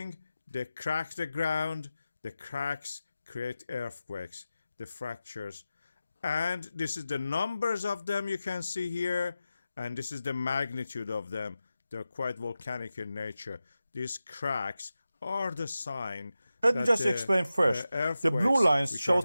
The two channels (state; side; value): inverted; both; correlation -0.94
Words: they crack the ground. The cracks create earthquakes, the fractures. And this is the numbers of them you can see here. And this is the magnitude of them. They're quite volcanic in nature. These cracks are the sign. Let me just explain first. The blue lines show